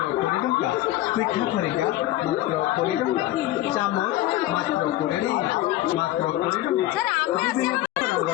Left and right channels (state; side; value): quieter; right; 15.4 dB